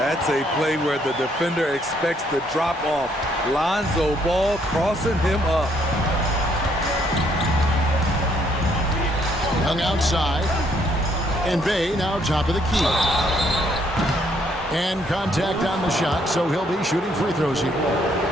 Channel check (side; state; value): both; normal; correlation 0.69